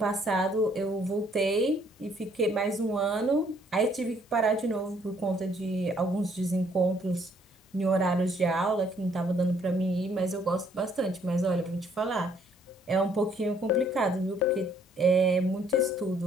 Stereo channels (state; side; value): normal; both; correlation 0.65